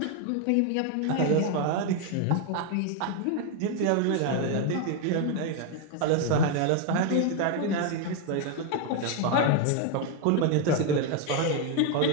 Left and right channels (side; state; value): both; different; correlation 0.01